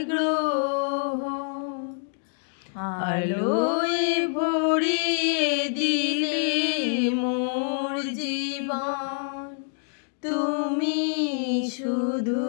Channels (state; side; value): silent; right; digital silence